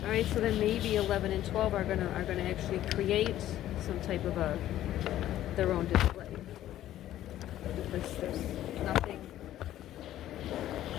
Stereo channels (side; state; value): right; quieter; 13.0 dB